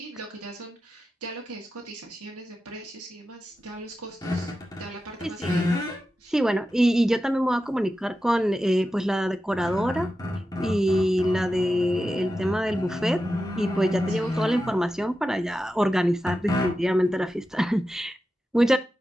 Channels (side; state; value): both; normal; correlation 0.91